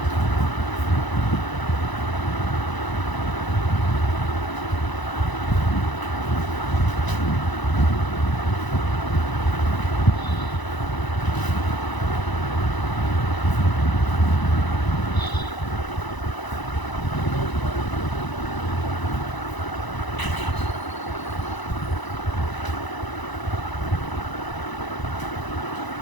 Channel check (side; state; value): right; late; 1.0 ms